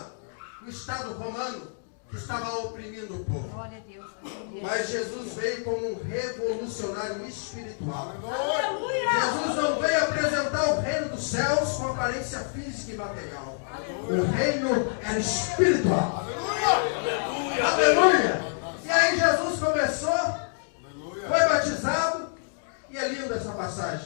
o Estado romano, que estava oprimindo o povo. Glória a Deus. Mas Jesus veio como um revolucionário espiritual. Jesus não veio apresentar o reino dos céus com aparência física e material. O reino era espiritual. Aleluia! E aí Jesus começou, foi batizado, e é linda essa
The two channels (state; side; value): silent; right; digital silence